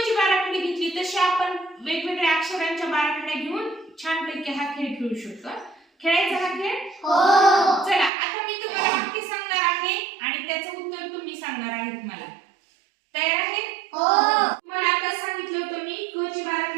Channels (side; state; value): left; drops out; at 8.1 s